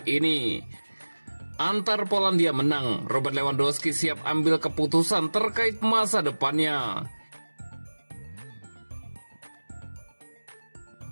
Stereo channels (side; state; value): both; inverted; correlation -1.00